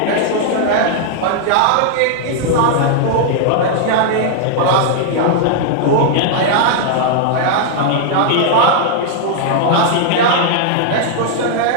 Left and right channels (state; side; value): different; both; correlation -0.01